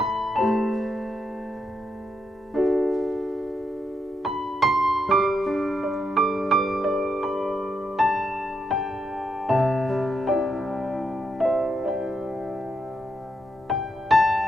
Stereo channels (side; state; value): both; normal; correlation 0.82